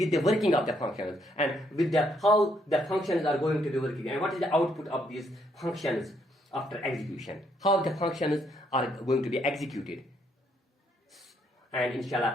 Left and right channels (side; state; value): both; normal; correlation 0.72